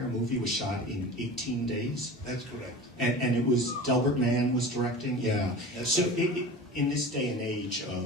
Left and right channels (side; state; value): both; normal; correlation 0.35